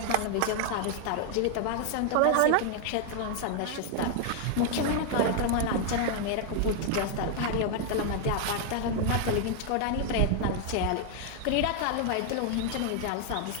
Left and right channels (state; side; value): different; both; correlation 0.00